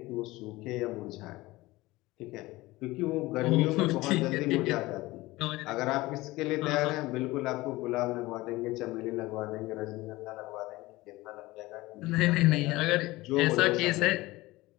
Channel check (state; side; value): quieter; right; 19.7 dB